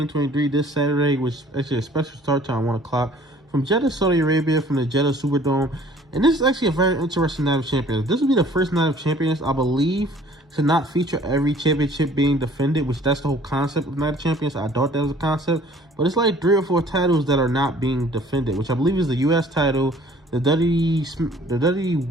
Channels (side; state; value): both; normal; correlation 0.53